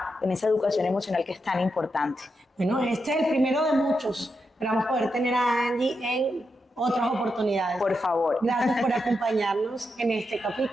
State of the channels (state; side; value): normal; both; correlation 0.85